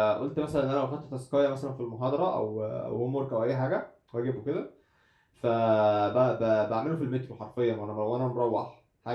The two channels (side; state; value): both; identical; correlation 1.00